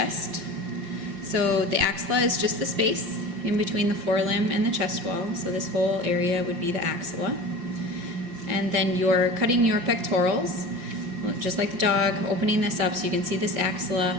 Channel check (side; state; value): left; late; 5.7 ms